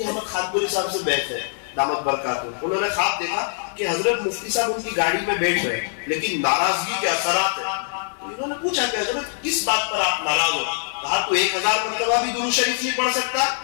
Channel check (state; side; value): silent; right; 63 dB below the other